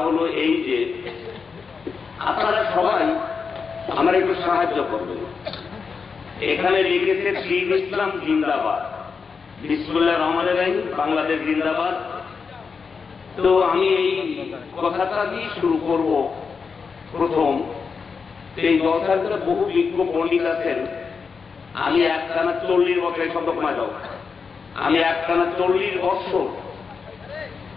হলো এই যে আপনারা সবাই আমার একটু সাহায্য করবেন। এখানে লিখেছে দীন ইসলাম জিন্দাবাদ, বিসমিল্লাহির রহমানির রহিম, বাংলাদেশ জিন্দাবাদ। তো আমি এই কথাটা দিয়ে শুরু করব। প্রথম, এই জলসার ভিতরে বহু বিজ্ঞ পণ্ডিত আছেন। আমি একটানা 40 বছর, এই শব্দ কমা যাও, আমি একটানা 40 বছর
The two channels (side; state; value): right; quieter; 5.4 dB